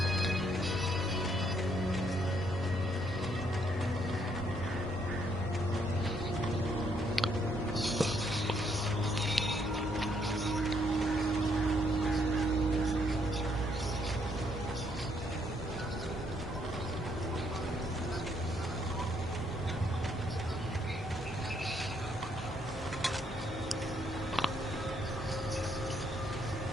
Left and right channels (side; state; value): both; normal; correlation 0.71